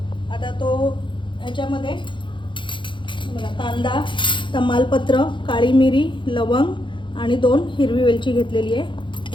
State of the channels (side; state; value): right; late; 0.23 ms